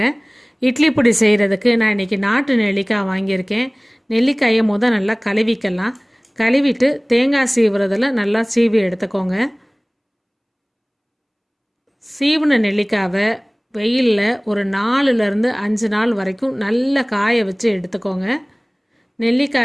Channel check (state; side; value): identical; both; correlation 1.00